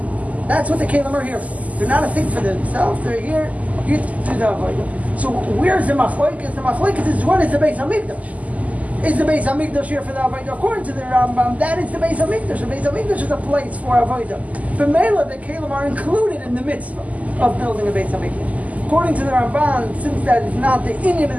That's what the Kelim are here for. They're not a thing for themselves, they're here to do the Avodah. So where's the Machlokes? The Machlokes is what is the Beis Hamikdash? Is the Beis Hamikdash here for the Avodah? According to the Rambam, that is the Beis Hamikdash. The Beis Hamikdash is a place for Avodah. But Mela, the Kelim are included in the mitzvah of building a Beis Hamikdash. According to the Ramban, since that is not the Inyan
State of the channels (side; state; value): left; late; 0.073 ms